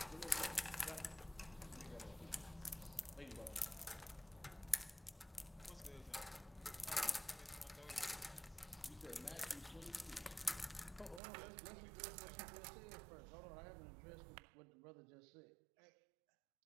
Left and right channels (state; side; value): drops out; left; at 11.2 s